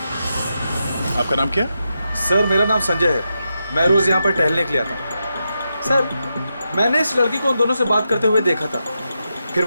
आपका नाम क्या? सर मेरा नाम संजय है, मैं रोज यहाँ पर टहलने के लिए आता हूँ। सर मैंने इस लड़की को उन दोनों से बात करते हुए देखा था, फिर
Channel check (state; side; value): inverted; both; correlation -0.86